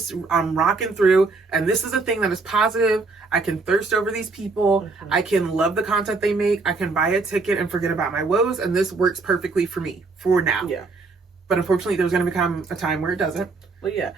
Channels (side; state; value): left; quieter; 3.9 dB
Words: rocking through, and this is a thing that is positive. I can thirst over these people. I can love the content they make. I can buy a ticket and forget about my woes, and this works perfectly for me for now. Yeah. But unfortunately, there's going to become a time where it doesn't. Well, yeah,